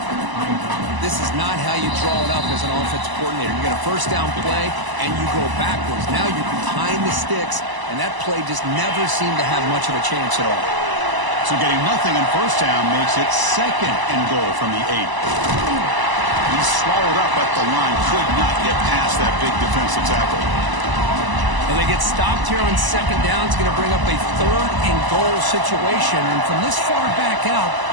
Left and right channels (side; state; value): left; late; 1.0 ms